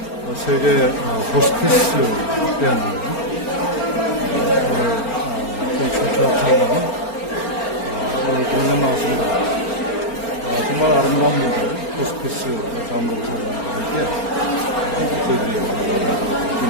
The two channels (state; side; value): late; right; 4.4 ms